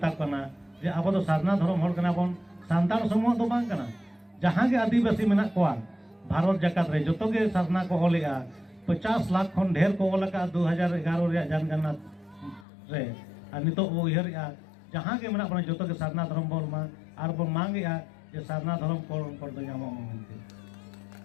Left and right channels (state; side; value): drops out; right; at 12.7 s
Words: कना जे अब तो सारना धर्म होल कना बन सांताल समूह दो बांग कना जहां के आदिवासी मेना कोआ भारत जकात रे जतो के सारना को ओलेगा 50 लाख खन ढेर को ओलका 2011 रे जनगणना रे और नितो ओ इहर जहां के मेना बन जतो के सारना धर्म बोल मा और बन मांगेगा जे सारना धर्म को दो नामो मेनते